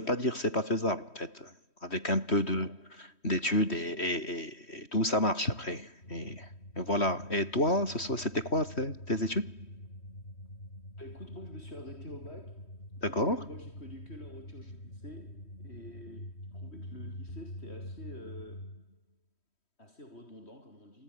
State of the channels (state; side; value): late; right; 3.1 ms